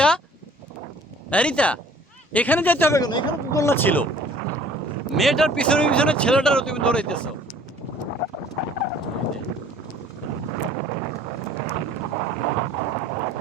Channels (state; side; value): normal; both; correlation 0.52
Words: রিতা, এখানে যেতে হবে কেন? এখানে তো দোলনা ছিল। মেয়েটার পিছনে পিছনে ছেলেটারও তুমি দৌড়াইতেছো।